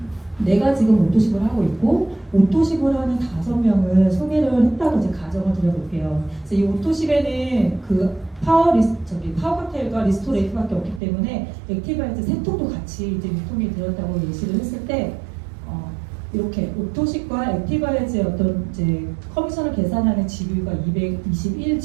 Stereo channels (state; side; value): drops out; left; at 11.0 s